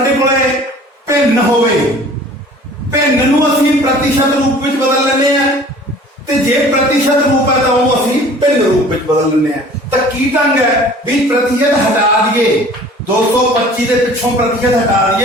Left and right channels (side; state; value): both; normal; correlation 0.48